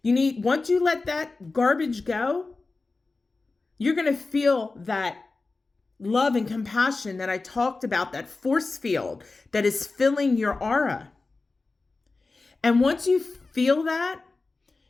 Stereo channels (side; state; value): right; quieter; 3.7 dB